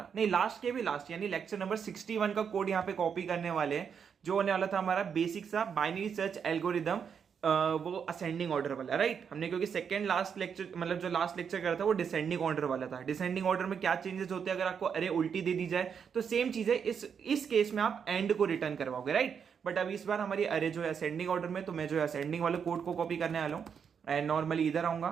नहीं लास्ट के भी लास्ट, यानी लेक्चर नंबर 61 का कोड यहाँ पे कॉपी करने वाले हैं, जो होने वाला था हमारा बेसिक सा बाइनरी सर्च एल्गोरिदम, वो असेंडिंग ऑर्डर वाला, राइट। हमने क्योंकि सेकंड लास्ट लेक्चर, मतलब जो लास्ट लेक्चर करा था वो डिसेंडिंग ऑर्डर वाला था। डिसेंडिंग ऑर्डर में क्या चेंजेस होते हैं, अगर आपको अरे उल्टी दे दी जाए तो सेम चीज है, इस केस में आप एंड को रिटर्न करवाओगे, राइट। बट अब इस बार हमारी अरे जो है असेंडिंग ऑर्डर में, तो मैं जो है असेंडिंग वाले कोड को कॉपी करने वाला हूँ। एंड नॉर्मली इधर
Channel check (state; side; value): quieter; left; 7.0 dB